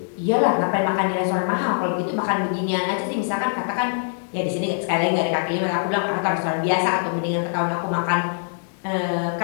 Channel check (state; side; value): silent; right; digital silence